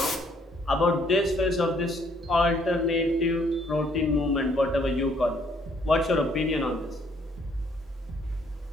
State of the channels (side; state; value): both; normal; correlation 0.65